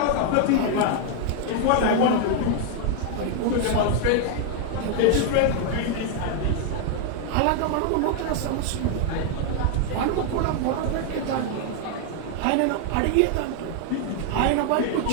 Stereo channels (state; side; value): different; both; correlation 0.00